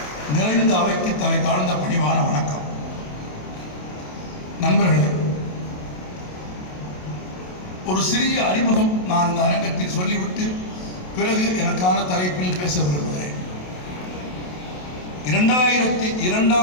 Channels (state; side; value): late; right; 27 ms